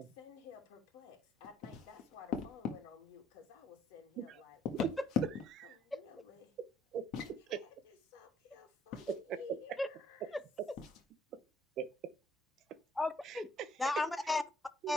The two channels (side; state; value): both; normal; correlation 0.65